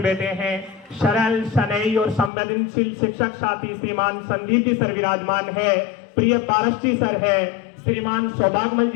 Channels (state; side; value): drops out; right; at 2.3 s